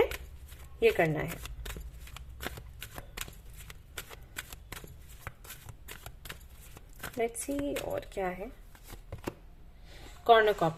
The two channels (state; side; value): identical; both; correlation 1.00